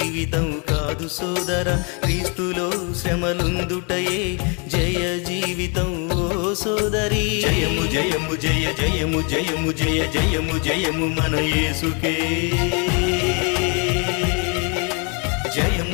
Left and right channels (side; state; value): right; quieter; 34.8 dB